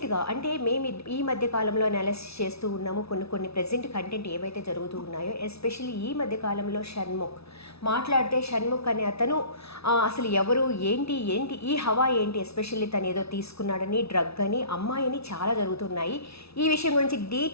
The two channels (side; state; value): right; late; 0.78 ms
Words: అంటే మేము ఈ మధ్య కాలంలో అనాలిసిస్ చేస్తూ ఉన్నాము కొన్ని ప్రెజెంట్ కంటెంట్ ఏవైతే జరుగుతూ ఉన్నాయో, ఎస్పెషల్లీ ఈ మధ్య కాలంలో షణ్ముఖ్ మాట్లాడితే షణ్ముఖ్ అనే అతను అసలు ఎవరు ఏంటి ఈ హవా ఏంటి, ఎస్పెషల్లీ తను ఏదో తీసుకున్నాడని, డ్రగ్ అని, అమ్మాయిని చాలా జరుగుతున్నాయి. ఈ విషయం గురించి